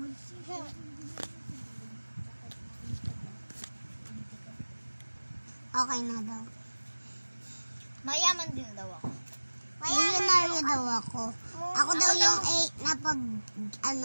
Okay na daw. Mayaman din daw ako. Millionaire daw ako. Ako daw yung A na pag,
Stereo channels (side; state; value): both; inverted; correlation -1.00